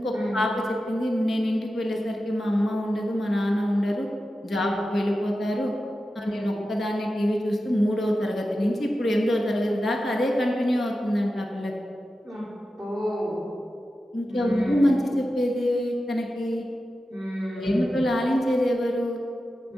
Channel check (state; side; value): normal; both; correlation 0.92